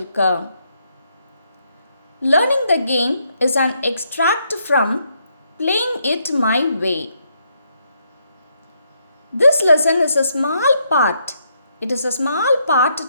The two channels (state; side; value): inverted; both; correlation -0.75